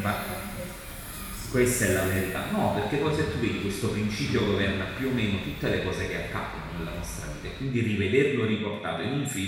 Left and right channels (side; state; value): both; identical; correlation 1.00